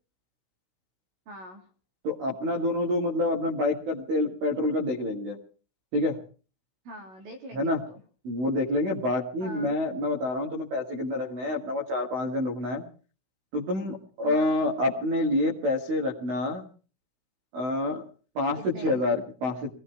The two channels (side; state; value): left; late; 16 ms